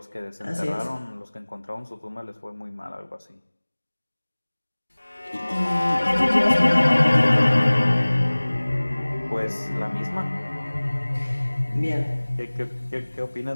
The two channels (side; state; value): both; inverted; correlation -1.00